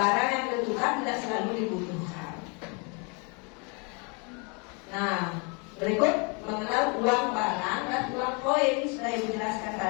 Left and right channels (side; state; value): right; quieter; 33.4 dB